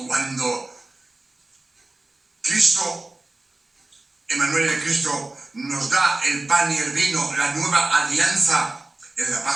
cuando Cristo, Emmanuel el Cristo, nos da el pan y el vino, la nueva alianza, en la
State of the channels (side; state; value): left; quieter; 3.0 dB